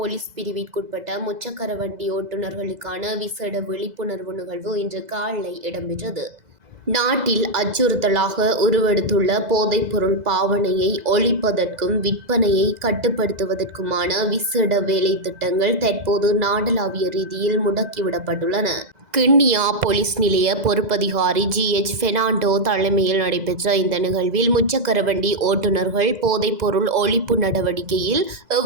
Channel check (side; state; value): left; late; 2.0 ms